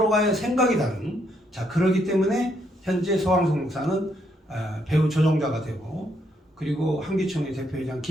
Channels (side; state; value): both; normal; correlation 0.74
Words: 생각이 다른, 자, 그러기 때문에 현재 서광석 목사는 배후 조종자가 되고, 그리고 한기총의 대표회장